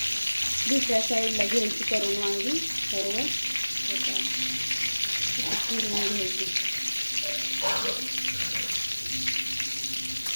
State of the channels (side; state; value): both; inverted; correlation -1.00